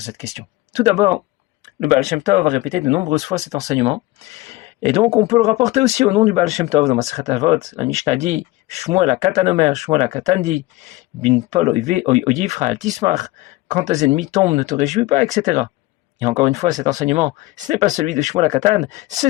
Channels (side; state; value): right; quieter; 18.9 dB